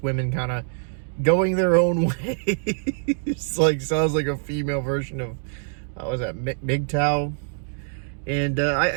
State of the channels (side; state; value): left; silent; digital silence